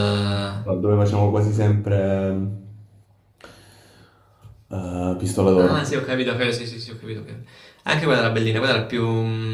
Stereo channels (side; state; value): both; identical; correlation 1.00